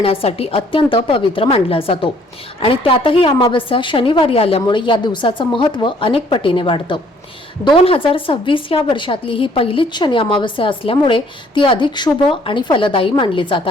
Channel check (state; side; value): normal; both; correlation 0.61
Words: अत्यंत पवित्र मानला जातो आणि त्यातही अमावस्या शनिवारी आल्यामुळे या दिवसाचं महत्त्व अनेक पटीने वाढतं। 2026 या वर्षातली ही पहिलीच शनी अमावस्या असल्यामुळे ती अधिक शुभ आणि फलदायी मानली जात